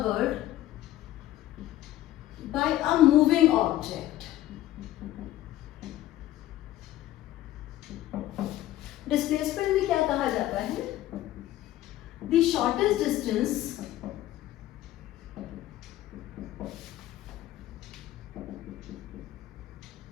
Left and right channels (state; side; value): quieter; right; 14.3 dB